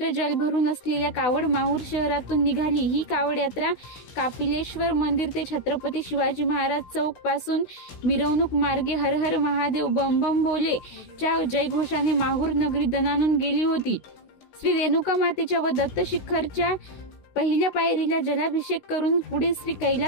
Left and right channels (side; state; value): right; late; 16 ms